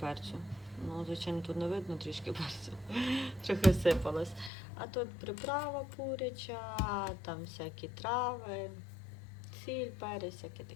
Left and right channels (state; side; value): drops out; right; at 4.5 s